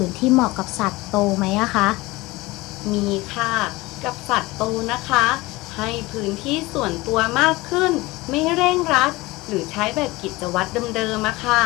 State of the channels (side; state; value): right; quieter; 21.1 dB